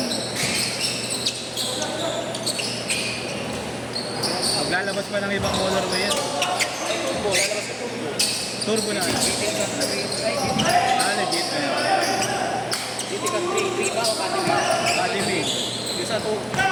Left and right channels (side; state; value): both; identical; correlation 1.00